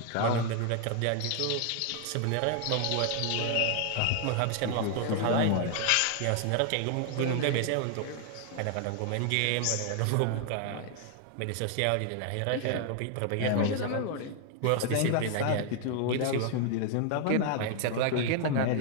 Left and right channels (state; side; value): different; both; correlation 0.00